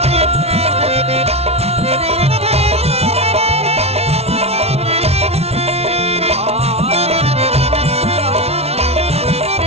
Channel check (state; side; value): late; left; 0.30 ms